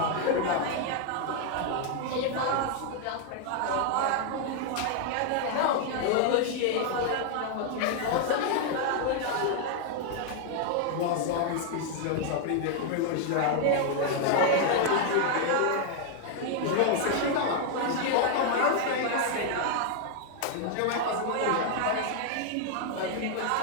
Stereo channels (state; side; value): different; both; correlation 0.00